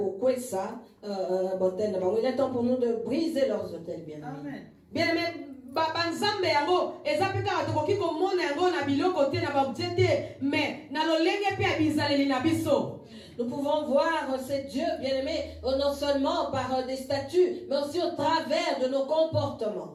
botel na bango. Il est temps pour nous de briser leurs hôtels, bien aimé. Bien aimé, banzambe yango ezapeka batokoki komona yango na biloko te na baobjet te mais na lolenge pe ya bizaleli na biso. Nous pouvons voir ces dieux, bien-aimés, non seulement par des statuts, mais aussi au travers de nos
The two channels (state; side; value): identical; both; correlation 1.00